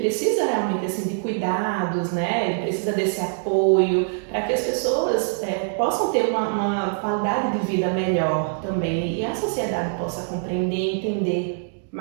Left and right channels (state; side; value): silent; left; digital silence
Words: realmente assim, de cuidados, né? Ele precisa desse apoio para que as pessoas possam ter uma qualidade de vida melhor também e a sociedade possa compreender e entender